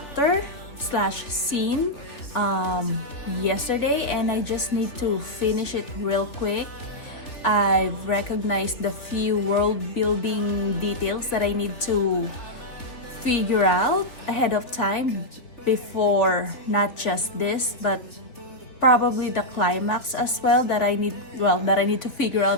slash scene yesterday, and I just need to finish it real quick. I've recognized the few world building details that I need to figure out ahead of time before not just this but probably the climax as well that I need to figure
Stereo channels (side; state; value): right; late; 3.2 ms